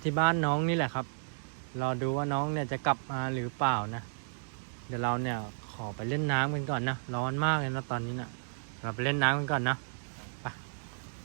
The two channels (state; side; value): silent; left; digital silence